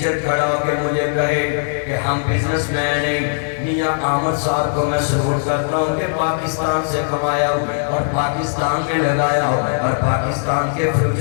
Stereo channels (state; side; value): silent; right; 67 dB below the other